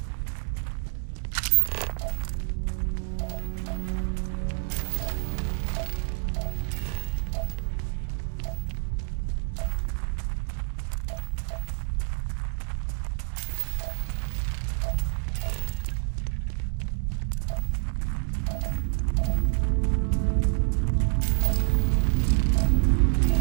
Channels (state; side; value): silent; left; 60 dB below the other